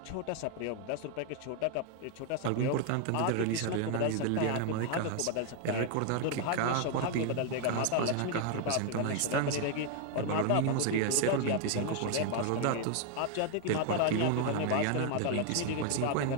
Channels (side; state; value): both; different; correlation 0.00